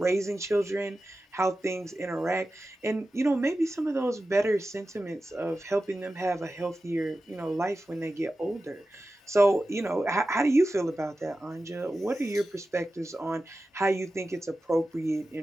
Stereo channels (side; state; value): both; normal; correlation 0.93